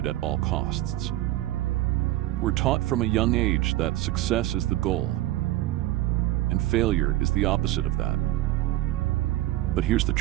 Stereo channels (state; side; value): quieter; left; 15.9 dB